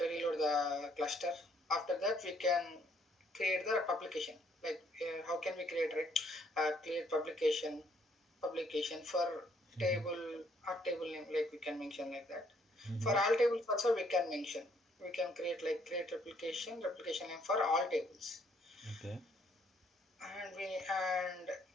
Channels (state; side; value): normal; both; correlation 0.67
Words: reload the cluster. After that we can create the publication. Like how can we create, right? Create publication for table or table name, like we can mention like that. For Mm-hmm. all tables also we can mention, we can create like create replication name for all tables. Okay. And